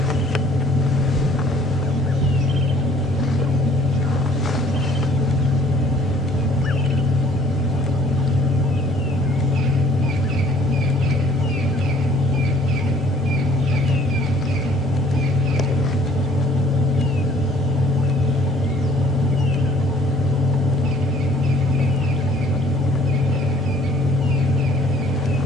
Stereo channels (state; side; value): normal; both; correlation 0.58